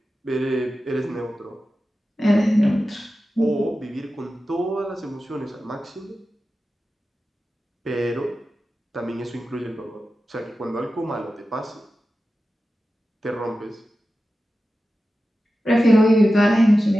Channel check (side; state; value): both; normal; correlation 0.93